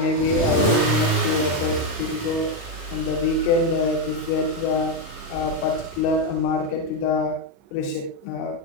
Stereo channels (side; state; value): right; late; 36 ms